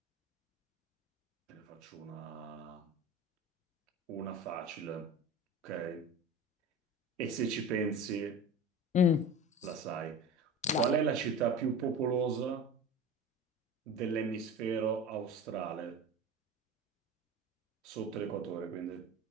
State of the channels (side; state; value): both; normal; correlation 0.33